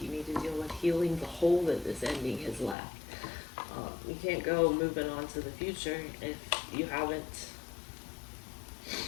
need to deal with healing the hole that this ending has left. You can't go moving on to the future if you haven't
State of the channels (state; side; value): drops out; right; at 2.8 s